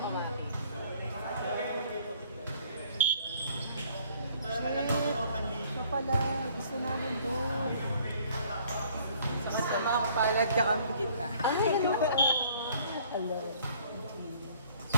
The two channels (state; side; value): inverted; both; correlation -0.58